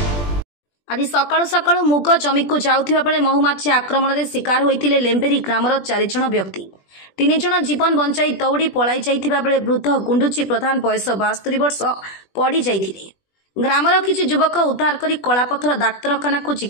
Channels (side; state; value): right; late; 20 ms